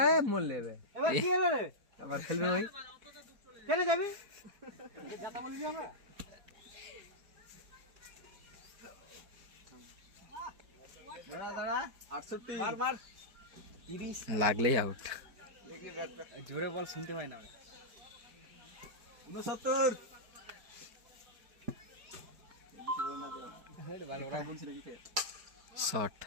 মোল লেবে এবার কি হলো রে আবার খেলবে ওই কেন যাবি যাতা বলি আমরা দাঁড়া 68 মার মার 30 লাগলেই আউট। জোরে বল শুনতে পাই না 69 শট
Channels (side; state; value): left; late; 4.6 ms